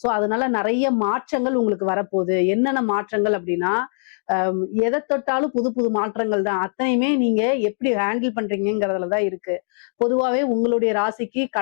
சோ அதனால நிறைய மாற்றங்கள் உங்களுக்கு வரப்போகுது. என்னென்ன மாற்றங்கள் அப்படின்னா, எதை தொட்டாலும் புது புது மாற்றங்கள் தான். அத்தனையுமே நீங்க எப்படி ஹேண்டில் பண்றீங்கிறதுலதான் இருக்கு. பொதுவாகவே உங்களுடைய ராசிக்கு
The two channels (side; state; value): right; silent; digital silence